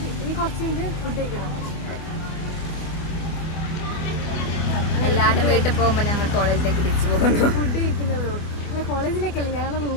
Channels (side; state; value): right; late; 25 ms